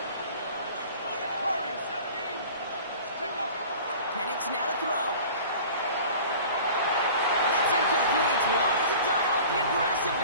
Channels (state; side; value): inverted; both; correlation -0.42